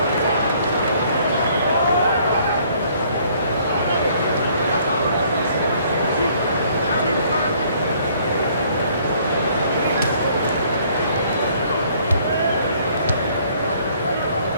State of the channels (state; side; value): inverted; both; correlation -0.61